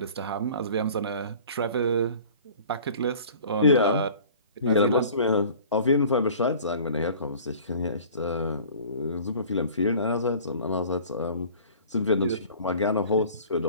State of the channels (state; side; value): inverted; both; correlation -0.46